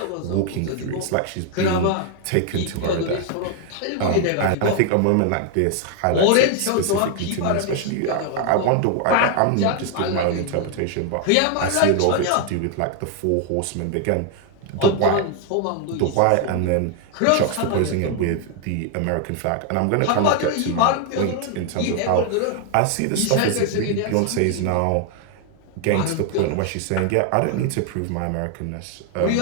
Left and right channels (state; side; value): different; both; correlation 0.00